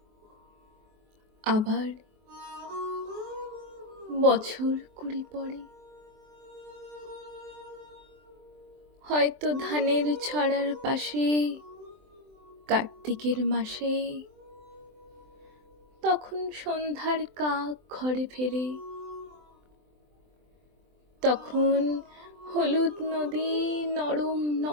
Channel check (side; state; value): left; late; 23 ms